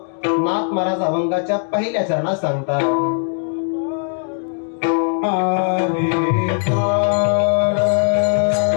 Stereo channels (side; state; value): right; silent; 67 dB below the other